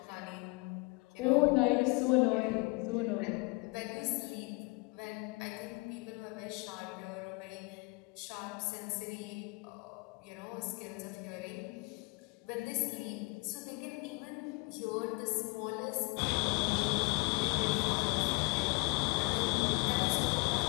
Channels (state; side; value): quieter; right; 28.7 dB